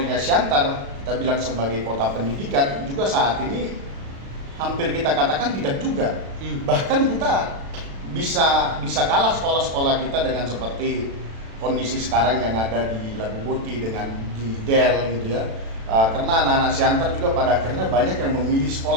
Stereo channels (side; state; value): left; late; 36 ms